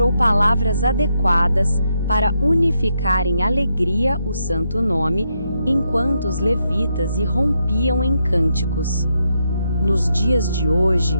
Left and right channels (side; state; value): both; inverted; correlation -0.81